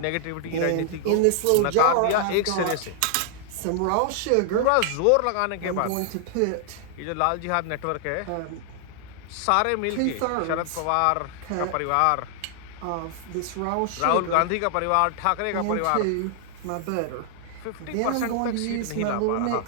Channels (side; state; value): both; different; correlation -0.01